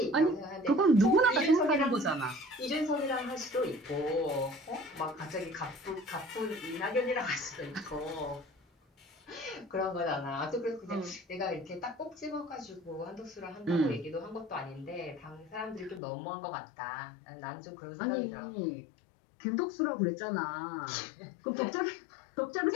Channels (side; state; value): right; drops out; at 16.0 s